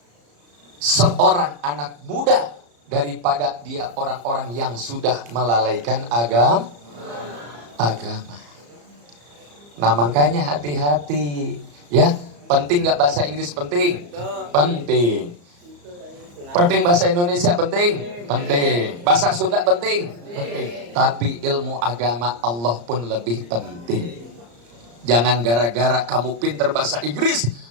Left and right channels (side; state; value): left; late; 34 ms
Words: seorang anak muda daripada dia orang-orang yang sudah melalaikan agama. Nah makanya hati-hati. Ya, penting nggak bahasa Inggris penting? Penting. Penting bahasa Indonesia penting? Penting. Bahasa Sunda penting? Penting. Tapi ilmu agama Allah pun lebih penting. Jangan gara-gara kamu pinter bahasa Inggris,